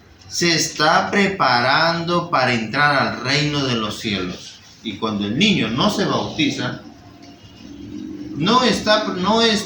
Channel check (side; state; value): both; identical; correlation 1.00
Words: Se está preparando para entrar al reino de los cielos. Y cuando el niño no se bautiza, no